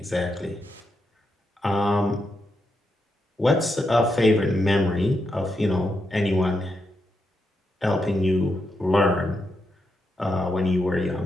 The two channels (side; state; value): both; normal; correlation 0.84